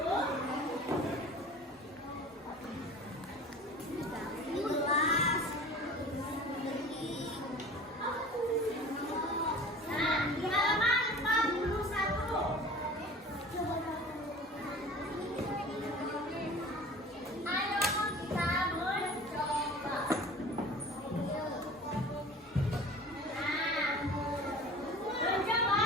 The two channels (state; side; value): normal; both; correlation 0.41